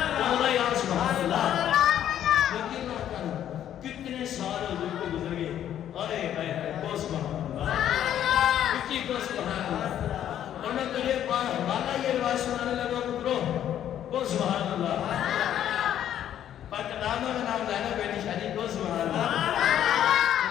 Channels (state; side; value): quieter; right; 10.7 dB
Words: اللہ یا سبحان اللہ یقین نہ کرو کتنے سال حضور کو گزر گئے ارے اے کو سبحان اللہ کتنی کو سبحان اللہ اور میں تجھے حوالہ یہ روایت سنانے لگا پترو کو سبحان اللہ پاکستان میں نام لینا بیٹی شادی کو سبحان اللہ